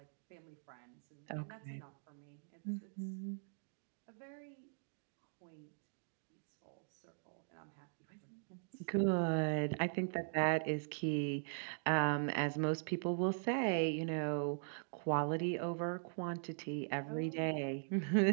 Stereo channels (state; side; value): silent; left; digital silence